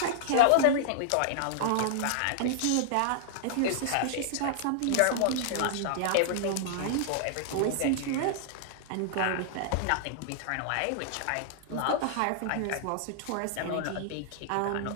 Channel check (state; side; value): different; both; correlation -0.01